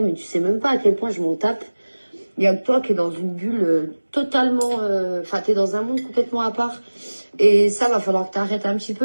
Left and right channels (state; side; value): inverted; both; correlation -1.00